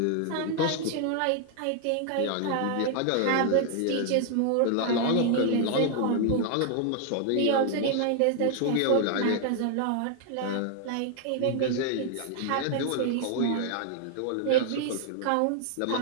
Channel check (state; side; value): different; both; correlation 0.00